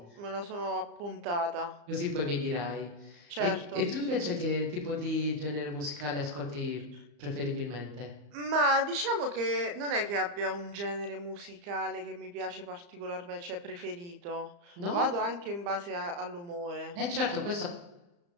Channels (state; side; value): late; left; 35 ms